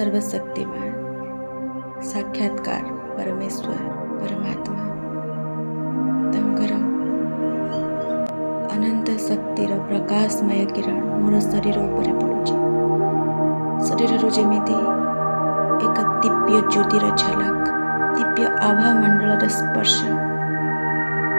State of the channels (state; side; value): inverted; both; correlation -1.00